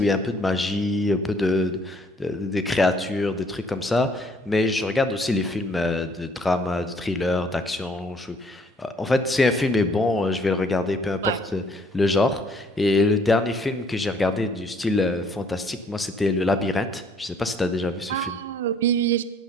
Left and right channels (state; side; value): normal; both; correlation 0.62